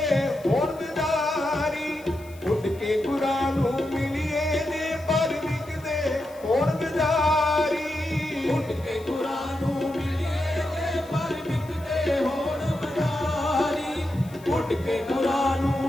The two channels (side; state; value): left; noise; hiss, 24 dB below the sound